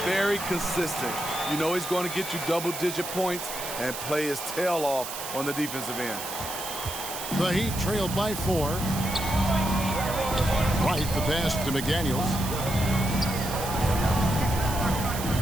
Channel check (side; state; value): right; noise; hiss, 7 dB below the sound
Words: very consistent. He's going to get you double-digit points and play his tail off on the defensive end. The Heat trailed by 4. Wright, the pass to McDaniels.